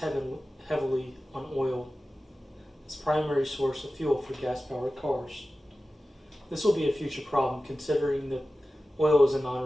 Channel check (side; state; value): both; normal; correlation 0.95